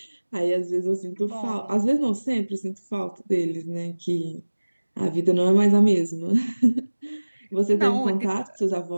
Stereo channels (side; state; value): both; inverted; correlation -1.00